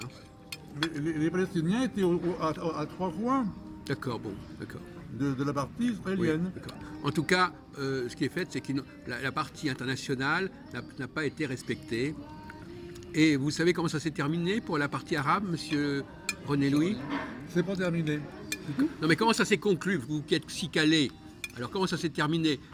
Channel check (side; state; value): both; identical; correlation 1.00